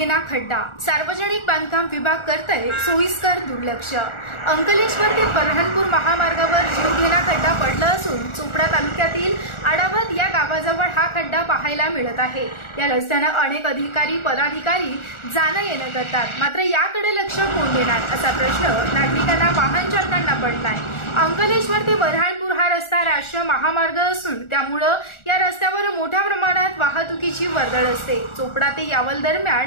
खड्डा, सार्वजनिक बांधकाम विभाग करतय सोयीस्कर दुर्लक्ष। अंकलेश्वर ते बऱ्हाणपूर महामार्गावर जीवघेणा खड्डा पडला असून चोपडा तालुक्यातील आडावत या गावाजवळ हा खड्डा पाहायला मिळत आहे। या रस्त्याने अनेक अधिकारी पदाधिकारी जाणं येणं करतात, मात्र याकडे लक्ष कोण देणार असा प्रश्न नागरिकांना वाहन चालकांना पडलाय। अंकलेश्वर ते बऱ्हाणपूर हा रस्ता राष्ट्रीय महामार्ग असून त्यामुळे या रस्त्यावर मोठ्या प्रमाणात वाहतुकीची वर्दळ असते। चोपडा ते यावल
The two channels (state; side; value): late; right; 1.4 ms